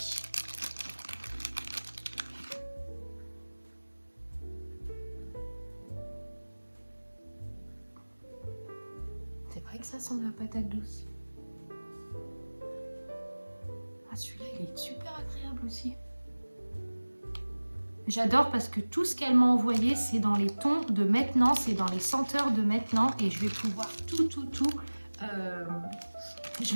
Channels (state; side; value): inverted; both; correlation -1.00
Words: que ça sent la patate douce. Ah, celui-là, il est super agréable aussi. J'adore parce que tout ce qu'elle m'a envoyé, c'est dans les tons de maintenant, c'est dans les senteurs de maintenant. Et je vais pouvoir je